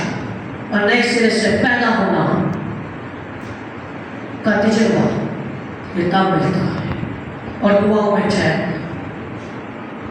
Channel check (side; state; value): both; identical; correlation 1.00